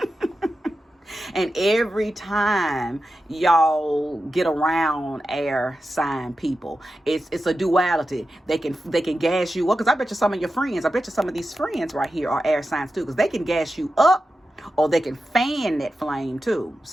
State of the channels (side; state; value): both; normal; correlation 0.91